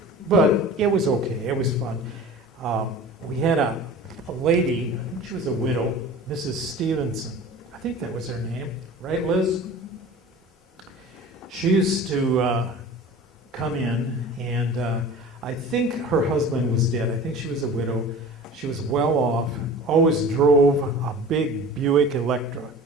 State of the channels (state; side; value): normal; both; correlation 0.39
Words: but it was okay. It was fun. We had a lady, I think she was a widow, Mrs. Stevenson. I think that was her name. Right, Liz? She used to come in, and I think her husband was dead. I think she was a widow. She was well off, always drove a big Buick Electra,